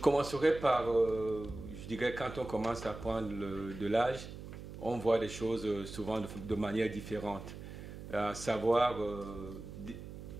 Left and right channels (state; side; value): noise; right; hum, 11 dB below the sound